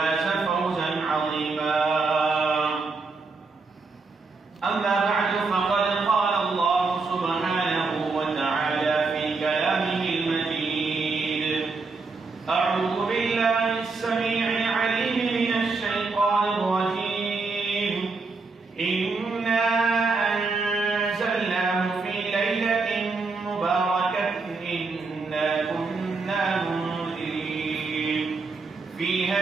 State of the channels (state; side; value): quieter; left; 4.1 dB